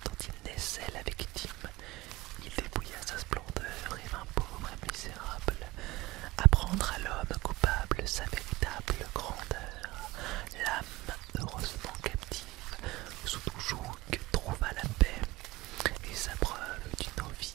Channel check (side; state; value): left; quieter; 20.1 dB